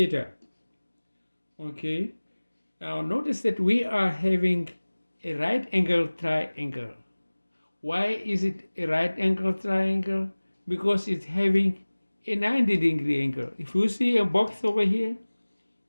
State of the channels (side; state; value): both; inverted; correlation -1.00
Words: Okay. Now notice that we are having a right angle triangle. Why is it a right angle triangle? Because it's having a 90-degree angle. If you see a box over here